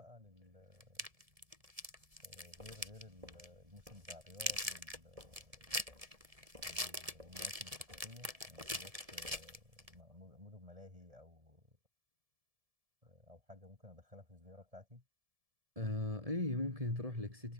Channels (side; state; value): left; late; 1.7 ms